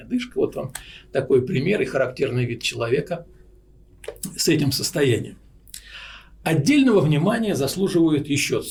одышка. Вот вам такой пример и характерный вид человека с этим состоянием. Отдельного внимания заслуживают еще, так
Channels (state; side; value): identical; both; correlation 1.00